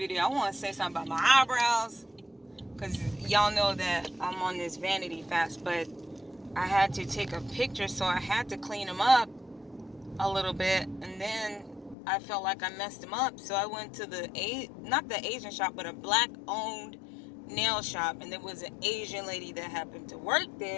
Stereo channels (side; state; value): right; drops out; at 12.0 s